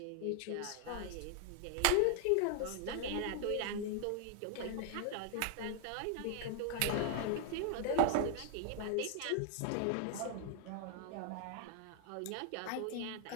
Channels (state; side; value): different; both; correlation 0.00